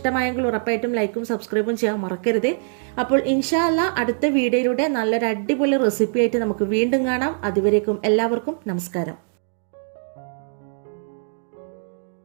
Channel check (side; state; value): left; silent; digital silence